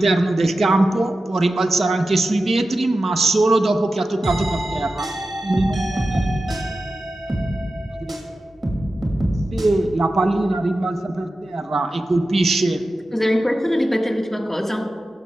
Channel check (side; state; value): both; normal; correlation 0.93